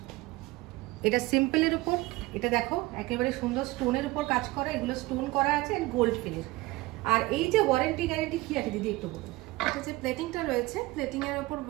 এটা সিম্পলের উপর, এটা দেখো একেবারে সুন্দর স্টোনের উপর কাজ করা, এগুলো স্টোন করা আছে এন্ড গোল্ড ফিনিশ। আর এই যে ওয়ারেন্টি গ্যারান্টি কি আছে দিদি একটু বলুন? এটা যে প্লেটিংটা রয়েছে, প্লেটিং এর উপর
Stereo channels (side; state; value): left; quieter; 20.5 dB